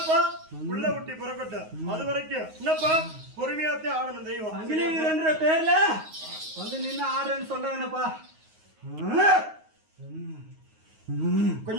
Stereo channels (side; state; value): left; late; 9.4 ms